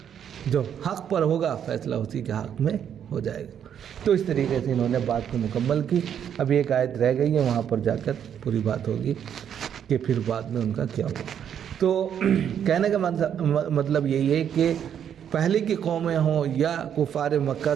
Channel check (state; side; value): quieter; left; 8.9 dB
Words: جو حق پر ہوگا فیصلہ اسی کے حق میں ہو جائے گا۔ تو اس طریقے سے انہوں نے بات کو مکمل کی۔ ابھی ایک آیت رہ گئی ہے، وہاں پر جا کر پوری بات ہوگی کہ پھر بعد میں ان کا کیا ہوا۔ تو کہنے کا مطلب یہی ہے کہ پہلے کی قومیں ہوں یا کفار مکہ